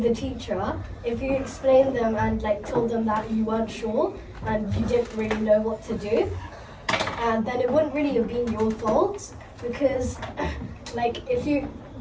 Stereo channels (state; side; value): identical; both; correlation 1.00